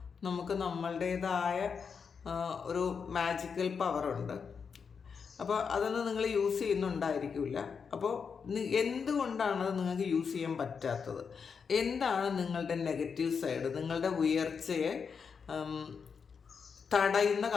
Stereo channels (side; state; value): right; quieter; 6.0 dB